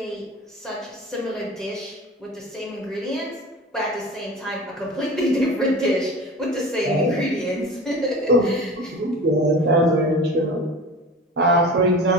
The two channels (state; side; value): normal; both; correlation 0.35